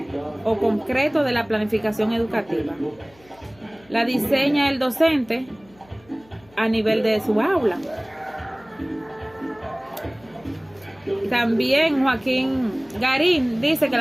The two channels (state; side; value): noise; left; hum, 28 dB below the sound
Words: o concreto de la planificación educativa. La diseña el docente a nivel de su aula. También Joaquín Garín dice que